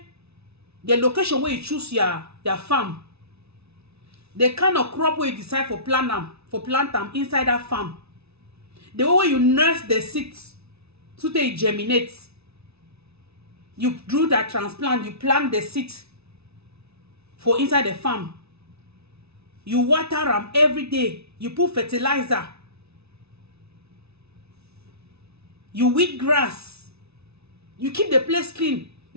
the location where you choose your farm, the kind of crop where you decide for plant them inside that farm, the way you nurse the seeds so they germinate, you do that transplant, you plant the seed for inside the farm, you water them every day, you put fertilizer, you weed grass, you keep the place clean,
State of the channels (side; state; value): left; late; 0.80 ms